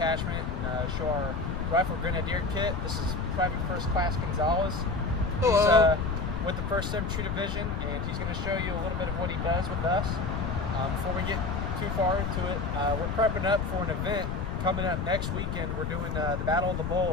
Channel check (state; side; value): noise; left; rumble, 2 dB below the sound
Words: and show our rifle grenadier kit. This is Private First Class Gonzalez. He's with the 1st Infantry Division, and he's going to show you a little bit of what he does with us. Before we get too far into it, we're prepping up for an event coming up next weekend. We're doing the Battle of the